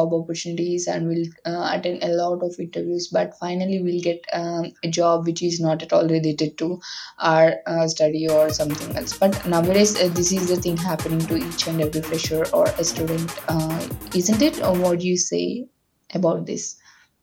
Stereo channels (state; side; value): identical; both; correlation 1.00